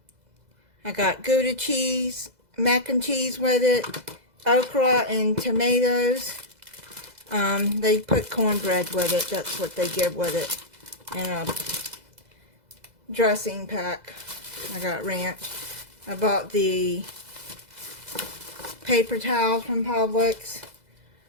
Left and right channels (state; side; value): late; left; 2.0 ms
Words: got Gouda cheese, mac and cheese with it, okra and tomatoes. They put cornbread with it. That's what they give with it. And a dressing pack. I got ranch. I bought the paper towels from Publix.